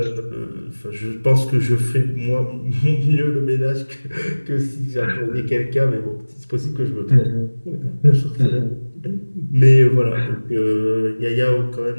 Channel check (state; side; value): inverted; both; correlation -1.00